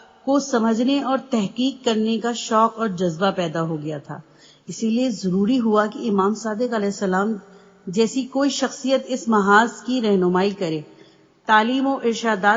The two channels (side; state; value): both; identical; correlation 1.00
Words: کو سمجھنے اور تحقیق کرنے کا شوق اور جذبہ پیدا ہو گیا تھا۔ اسی لیے ضروری ہوا کہ امام صادق علیہ السلام جیسی کوئی شخصیت اس محاذ کی رہنمائی کرے، تعلیم و